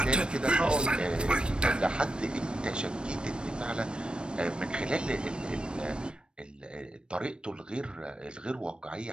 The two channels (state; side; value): late; left; 0.054 ms